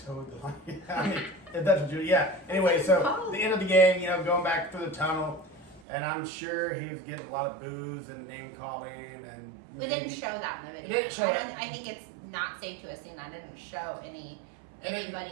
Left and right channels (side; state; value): left; drops out; at 5.8 s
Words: the line. I mean, if that's what you, yeah. Anyway, so the end of the game, going back through the tunnel, and I'm sure he was getting a lot of boos and name calling, and We didn't show that in the video. didn't show that. I think it's not safe to assume that didn't show